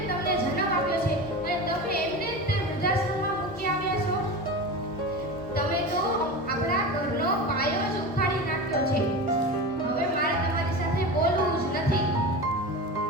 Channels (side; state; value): both; normal; correlation 0.27